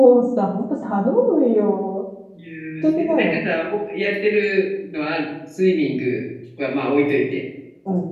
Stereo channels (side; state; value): both; identical; correlation 1.00